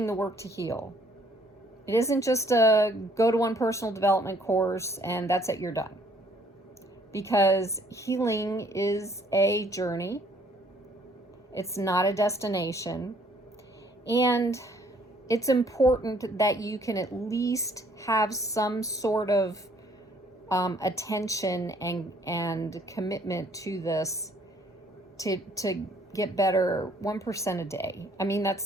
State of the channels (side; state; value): both; normal; correlation 0.62